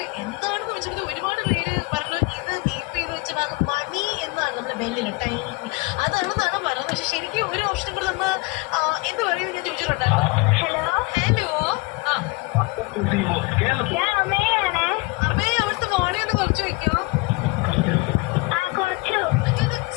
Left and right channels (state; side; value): quieter; right; 25.2 dB